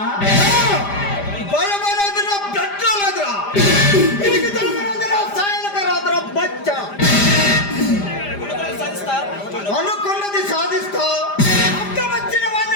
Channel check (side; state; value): right; late; 5.0 ms